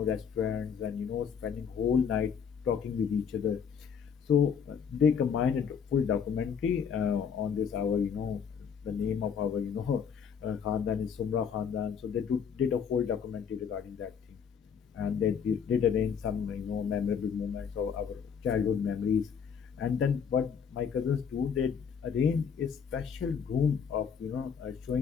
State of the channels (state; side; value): quieter; right; 7.0 dB